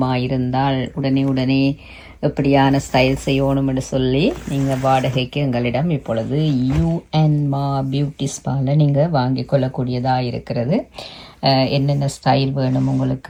இருந்தால் உடனே எப்படியான ஸ்டைல் செய்யணும் என்று சொல்லி நீங்கள் வாடகைக்கு எங்களிடம் இப்பொழுது யூஎன்மா பியூட்டி ஸ்பாவில் நீங்கள் வாங்கி கொள்ளக்கூடியதாக இருக்கிறது. என்னென்ன ஸ்டைல் வேணும்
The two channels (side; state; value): both; identical; correlation 1.00